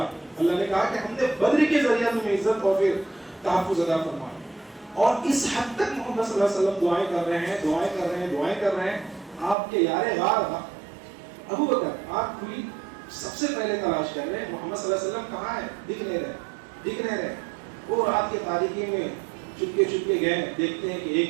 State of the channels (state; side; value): drops out; left; at 9.6 s